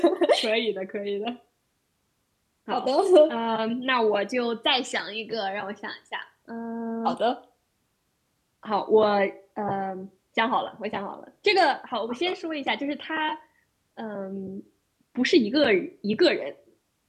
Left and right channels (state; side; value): identical; both; correlation 1.00